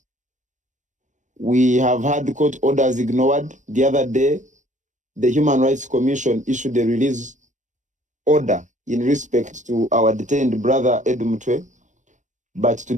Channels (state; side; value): late; left; 0.35 ms